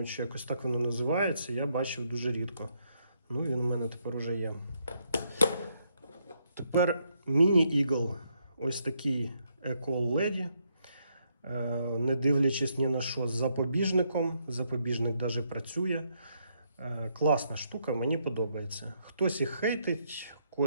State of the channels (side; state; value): both; inverted; correlation -0.75